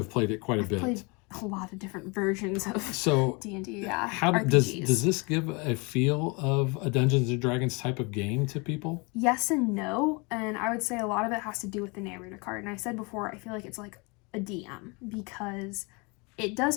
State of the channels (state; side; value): quieter; right; 29.5 dB